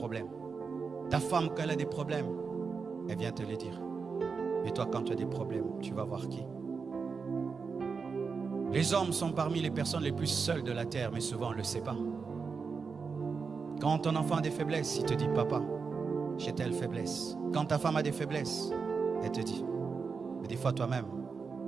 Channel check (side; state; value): left; quieter; 5.2 dB